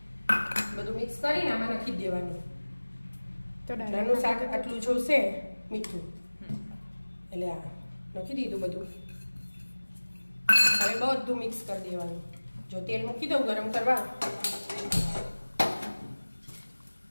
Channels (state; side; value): inverted; both; correlation -1.00